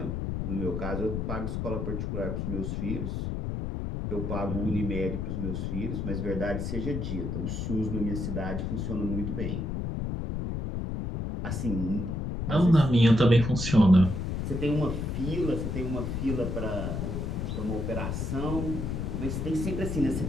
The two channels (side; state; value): left; noise; rumble, 2 dB below the sound